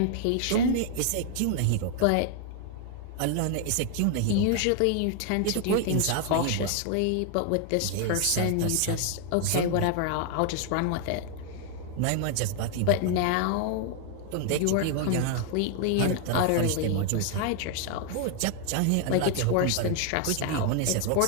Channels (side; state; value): both; different; correlation 0.00